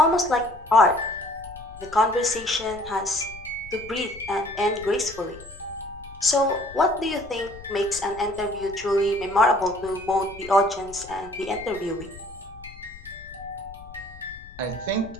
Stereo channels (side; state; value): left; noise; rumble, 18 dB below the sound